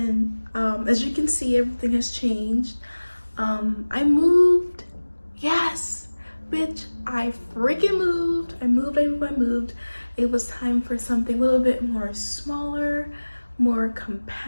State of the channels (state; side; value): inverted; both; correlation -1.00